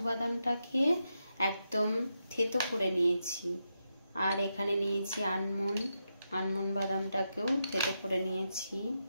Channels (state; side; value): inverted; both; correlation -0.86